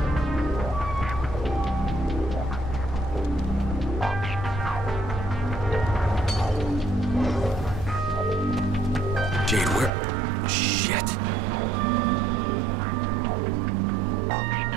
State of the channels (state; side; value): drops out; left; at 9.9 s